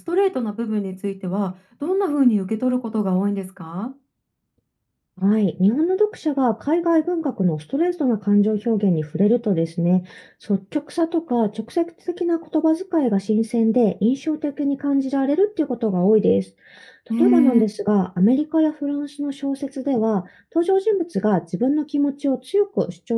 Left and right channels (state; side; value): identical; both; correlation 1.00